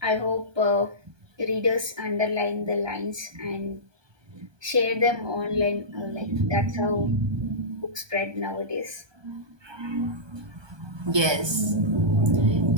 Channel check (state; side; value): late; left; 1.2 ms